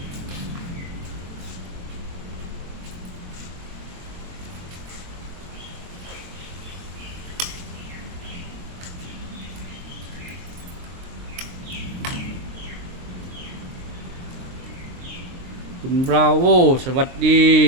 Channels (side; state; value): left; late; 23 ms